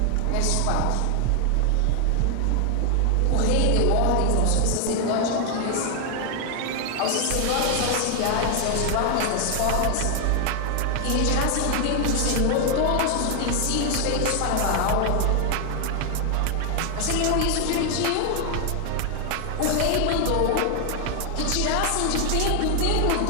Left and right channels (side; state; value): both; different; correlation 0.00